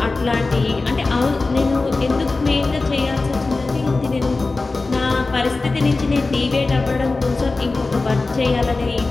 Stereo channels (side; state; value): right; quieter; 3.5 dB